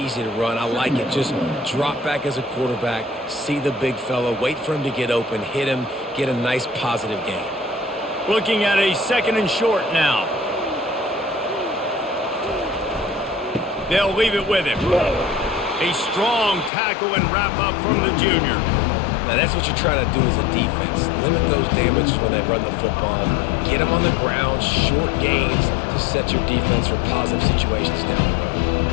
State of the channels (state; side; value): drops out; right; at 16.7 s